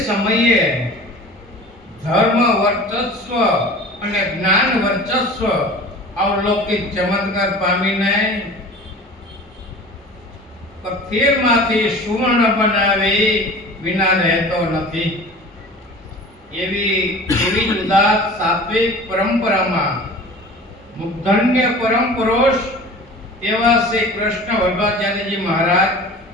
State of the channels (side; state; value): both; normal; correlation 0.40